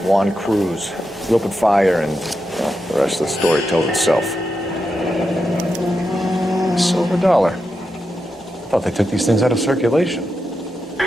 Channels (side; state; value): both; normal; correlation 0.87